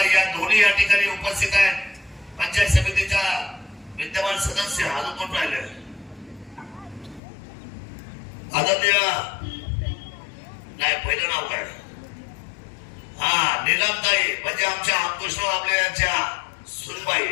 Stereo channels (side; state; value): right; drops out; at 7.2 s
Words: या दोन्ही या ठिकाणी उपस्थित आहेत. पंचायत समितीच्या विद्यमान सदस्य अजून कोण राहिले? आदरणीय नाही पहिलं नाव काय? हा नीलमताई म्हणजे आमच्या अंकुशराव आपल्या यांच्या सुनबाई